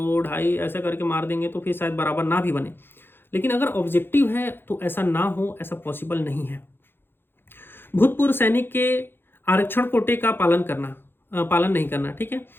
2.5 ऐसा करके मार देंगे तो फिर शायद बराबर ना भी बने। लेकिन अगर ऑब्जेक्टिव है तो ऐसा ना हो, ऐसा पॉसिबल नहीं है। भूतपूर्व सैनिक के आरक्षण कोटे का पालन नहीं करना, ठीक है।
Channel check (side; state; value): right; late; 0.10 ms